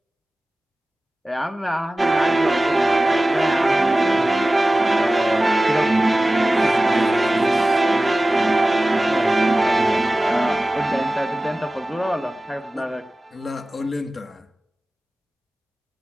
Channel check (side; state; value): both; normal; correlation 0.96